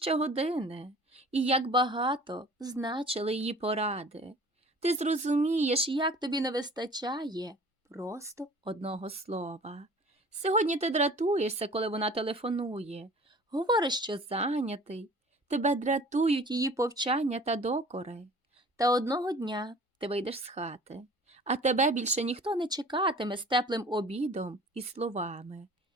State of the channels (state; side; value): normal; both; correlation 0.46